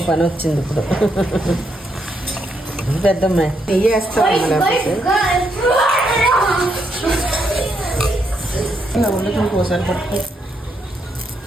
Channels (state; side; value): normal; both; correlation 0.78